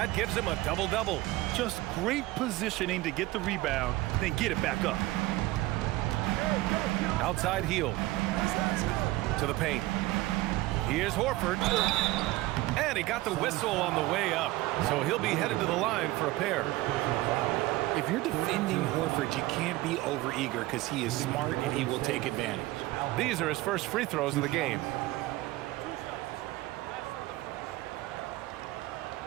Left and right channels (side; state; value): left; quieter; 18.4 dB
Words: gives him a double-double. Just great positioning to get the rebound, then get it back up. Outside heel. To the paint. Here's Horford. And he got the whistle on the way up. So he'll be headed to the line for a pair. If you're defending Horford, you can't be overeager because he is smart and he will take advantage. These are his first free throws of the game.